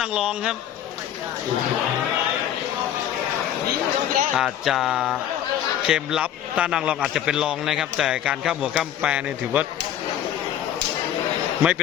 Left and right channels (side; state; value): right; quieter; 10.7 dB